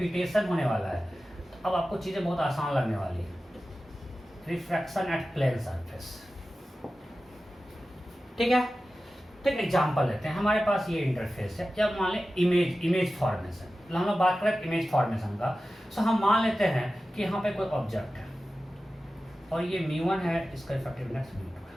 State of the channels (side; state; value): both; normal; correlation 0.94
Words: होने वाला है, तो अब आपको चीजें बहुत आसान लगने वाली है। रिफ्रैक्शन एट प्लेन सरफेस, ठीक है? तो एक एग्जाम्पल लेते हैं। हमारे पास ये इंटरफेस है, जब मान लें इमेज फॉर्मेशन, हम लोग बात करें इमेज फॉर्मेशन का। सो हम मान लेते हैं कि यहाँ पे कोई ऑब्जेक्ट है और ये μ1 है, इसका इफेक्टिवनेस μ2 है,